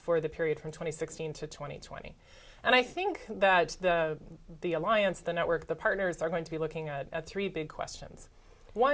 the period from 2016 to 2020. And I think that the alliance, the network, the partners are going to be looking at three big questions.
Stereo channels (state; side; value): identical; both; correlation 1.00